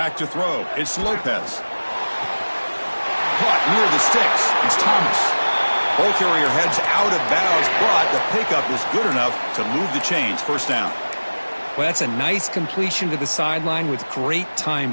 to throw. It's Lopez. Caught near the sticks. It's Thomas. Ball carrier heads out of bounds, but the pickup is good enough to move the chains. First down. Well, that's a nice completion to the sideline with great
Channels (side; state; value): both; inverted; correlation -1.00